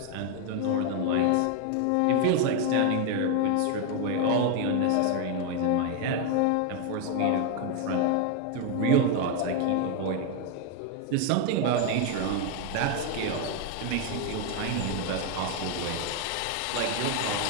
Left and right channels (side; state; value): both; different; correlation 0.01